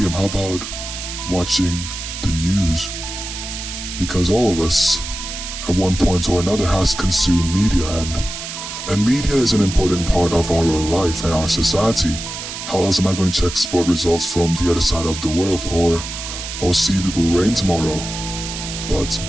How about watching the news? Because all of us, at one point or another, has consumed media, and media is an important part of our own life and our society. How else am I going to check sport results from the other side of the world, or see if it will rain tomorrow? But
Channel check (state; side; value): noise; right; hiss, 8 dB below the sound